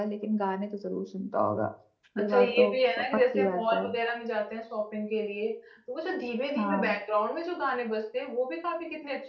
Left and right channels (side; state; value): both; identical; correlation 1.00